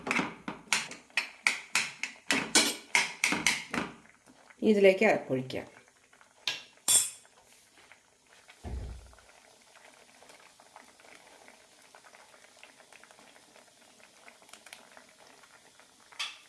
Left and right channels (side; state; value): both; identical; correlation 1.00